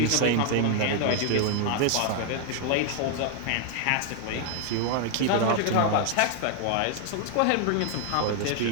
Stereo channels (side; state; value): both; different; correlation 0.00